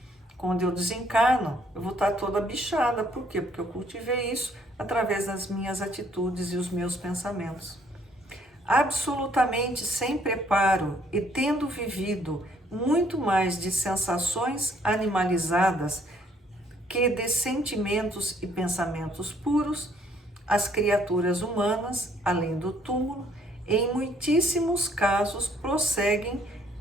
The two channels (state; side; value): normal; both; correlation 0.64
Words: Quando eu desencarno, eu vou estar toda bichada. Por quê? Porque eu cultivei isso através das minhas atitudes e os meus pensamentos. Absolutamente sem preparo e tendo vivido muito mais de sensações animalizadas que de sentimentos e pensamentos puros, as criaturas humanas, além do túmulo, em muitíssimos casos prosseguem